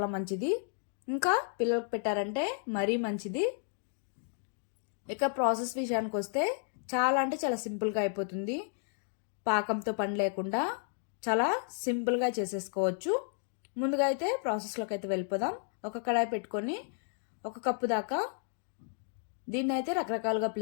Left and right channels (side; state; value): right; silent; 56 dB below the other